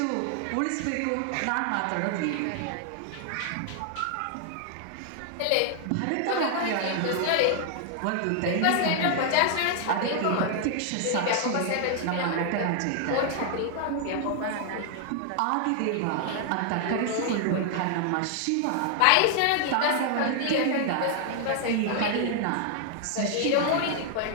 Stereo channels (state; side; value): different; both; correlation 0.00